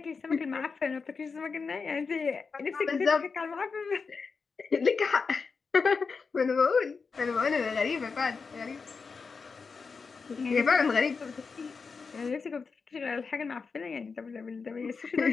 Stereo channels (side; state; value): right; quieter; 5.0 dB